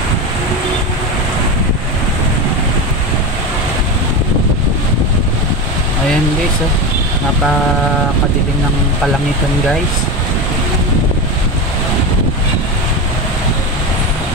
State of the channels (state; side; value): normal; both; correlation 0.20